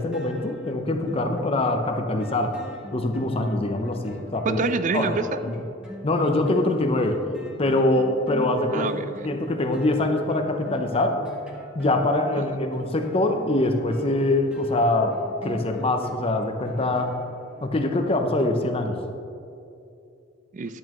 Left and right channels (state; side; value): normal; both; correlation 0.40